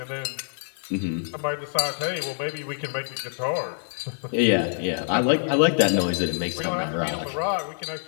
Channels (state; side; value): silent; right; 61 dB below the other